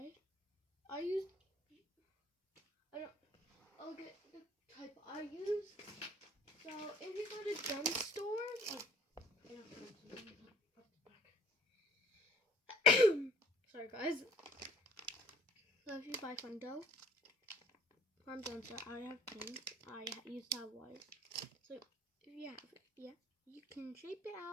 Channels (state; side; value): normal; both; correlation 0.54